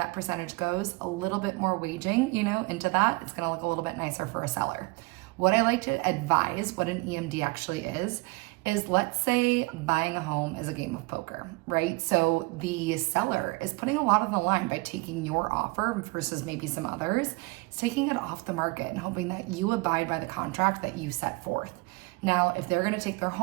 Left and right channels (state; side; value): quieter; left; 25.1 dB